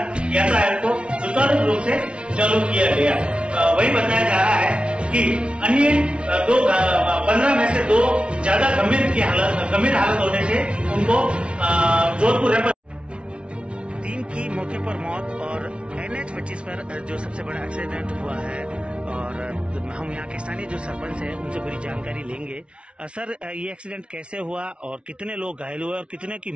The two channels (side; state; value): left; late; 0.059 ms